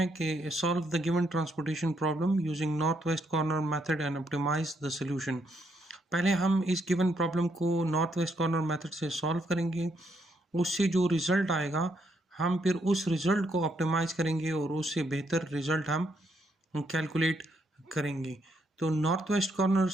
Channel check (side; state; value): both; normal; correlation 0.75